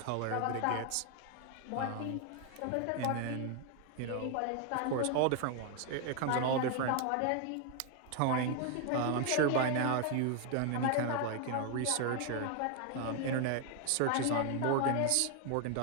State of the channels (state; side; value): different; both; correlation 0.00